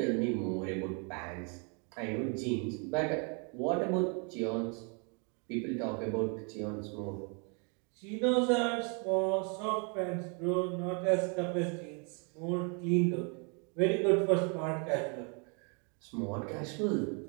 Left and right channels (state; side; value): quieter; left; 36.3 dB